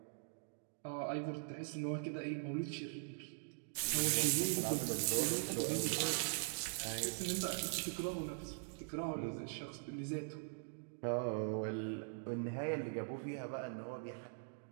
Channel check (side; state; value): left; silent; digital silence